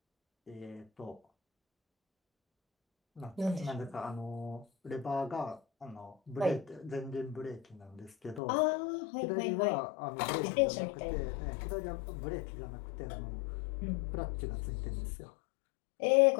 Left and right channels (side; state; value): right; drops out; at 8.4 s